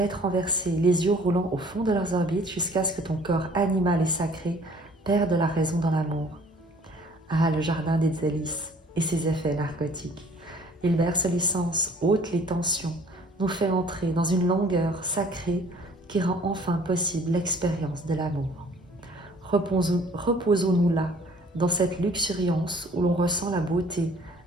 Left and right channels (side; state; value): both; normal; correlation 0.54